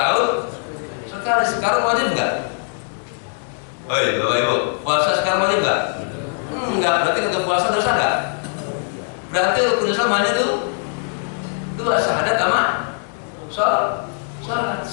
sekali. Sekarang wajib enggak? Oh iya Bapak Ibu, puasa sekarang wajib enggak? Enggak, berarti kagak puasa dosa enggak? Berarti rukun Islam hanya itu 2, syahadat sama sholat.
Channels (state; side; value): silent; right; 65 dB below the other